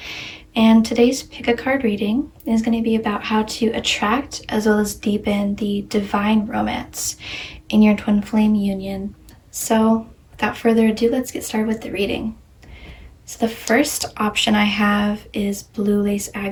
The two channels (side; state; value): both; identical; correlation 1.00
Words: And today's pick a card reading is going to be about how to attract as well as deepen the divine romance in your Twin Flame Union. So without further ado, let's get started with the reading. So the first option I have is Blue Lace